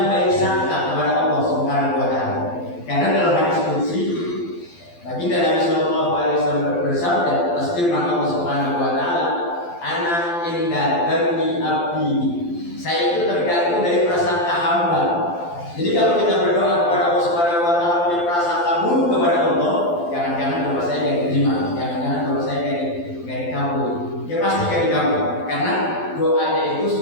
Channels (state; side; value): late; right; 12 ms